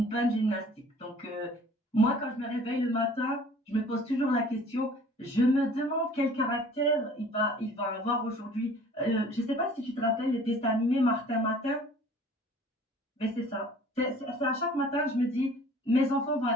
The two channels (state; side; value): normal; both; correlation 0.50